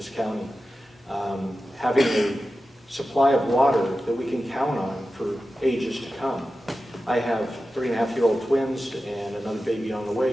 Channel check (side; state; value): both; normal; correlation 0.93